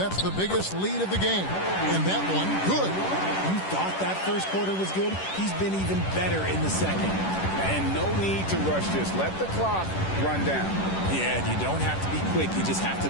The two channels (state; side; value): late; right; 10 ms